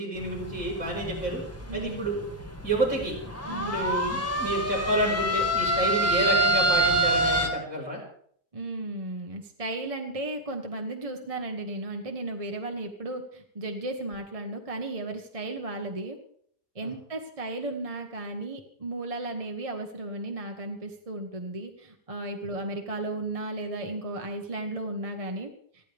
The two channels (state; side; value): normal; both; correlation -0.07